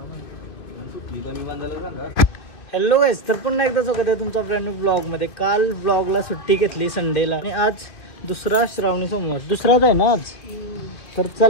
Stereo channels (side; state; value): right; late; 2.7 ms